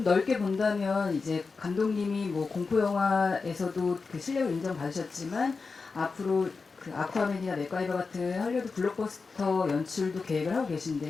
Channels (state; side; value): quieter; right; 4.5 dB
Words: 넓게 본다면 이제 감독님이 뭐 공포 영화에서도 실력을 인정받으셨지만 앞으로 아쿠아맨이나 맥가이버 같은 할리우드 블록버스터 연출도 계획을 하고